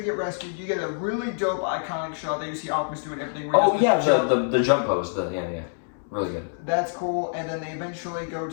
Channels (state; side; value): silent; right; 61 dB below the other